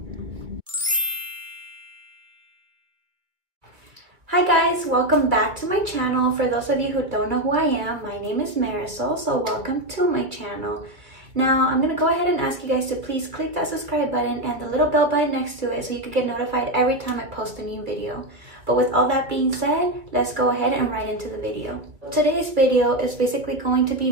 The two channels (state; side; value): late; left; 2.3 ms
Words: Hi guys, welcome back to my channel. For those of you who don't know who I am, my name is Marisol, so welcome to my channel. Now, I'm gonna go ahead and ask you guys to please click that subscribe button and the little bell button next to it so you can get notified every time I post a new video. But with all that being said, let's go ahead and right into the video. Today's video is basically going to